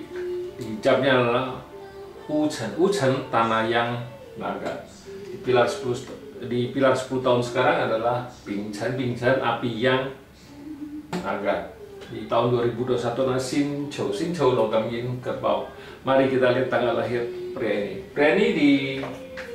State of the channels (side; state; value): both; identical; correlation 1.00